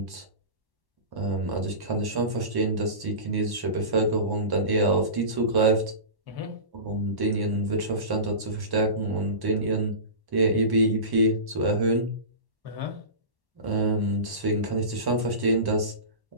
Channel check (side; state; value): left; late; 1.1 ms